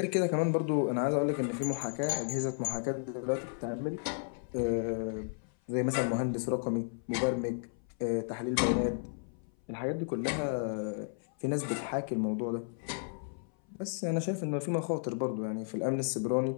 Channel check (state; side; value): silent; right; 55 dB below the other